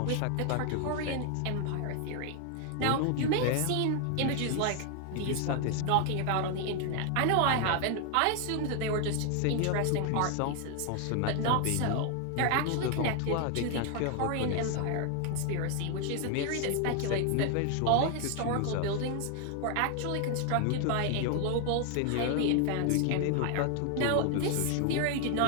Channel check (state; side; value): different; both; correlation 0.00